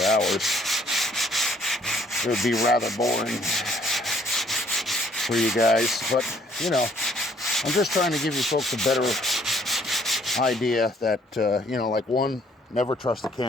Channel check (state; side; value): normal; both; correlation 0.63